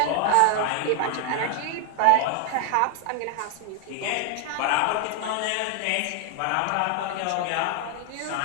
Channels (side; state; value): both; different; correlation 0.00